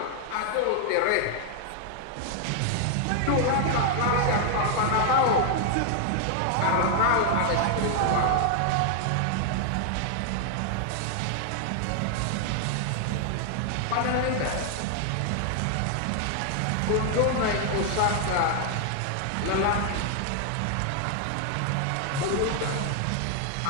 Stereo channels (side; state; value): both; different; correlation 0.00